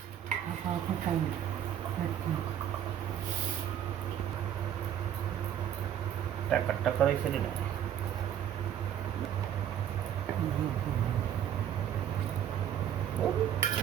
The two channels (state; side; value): quieter; left; 10.1 dB